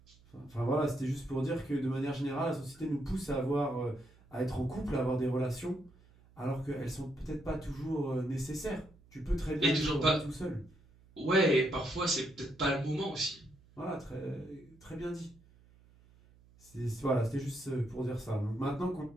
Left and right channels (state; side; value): noise; right; hum, 27 dB below the sound